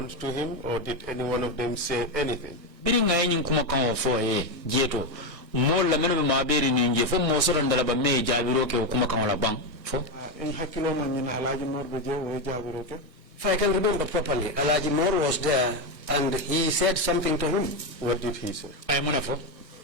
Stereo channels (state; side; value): late; left; 1.6 ms